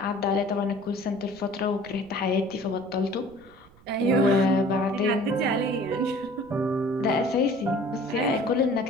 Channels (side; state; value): right; noise; rumble, 25 dB below the sound